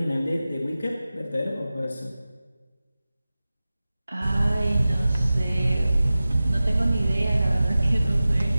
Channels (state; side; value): inverted; both; correlation -0.96